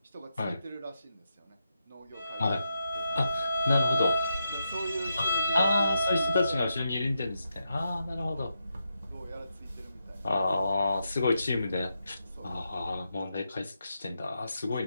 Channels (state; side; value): inverted; both; correlation -0.85